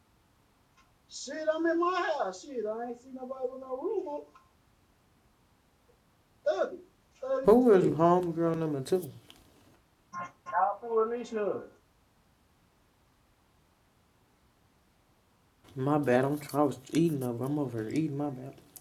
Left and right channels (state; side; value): identical; both; correlation 1.00